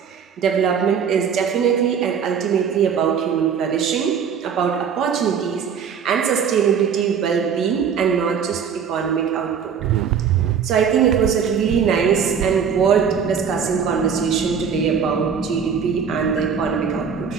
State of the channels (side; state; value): left; quieter; 7.0 dB